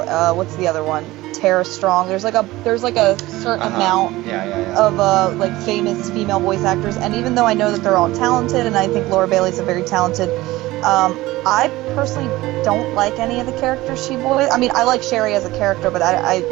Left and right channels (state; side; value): quieter; left; 18.3 dB